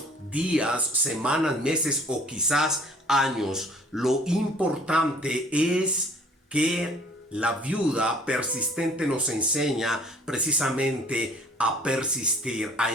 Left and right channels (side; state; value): both; normal; correlation 0.54